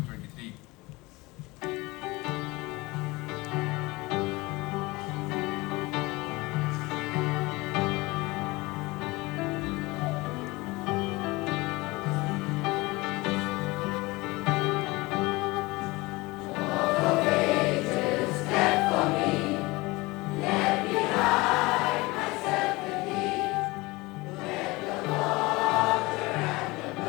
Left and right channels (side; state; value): right; quieter; 22.6 dB